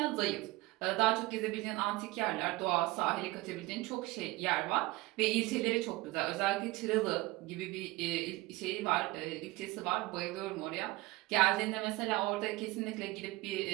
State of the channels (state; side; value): quieter; left; 20.4 dB